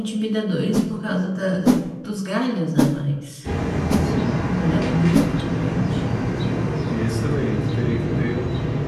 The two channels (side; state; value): both; identical; correlation 1.00